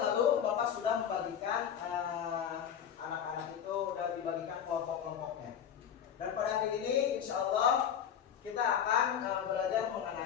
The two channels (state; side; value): quieter; right; 8.6 dB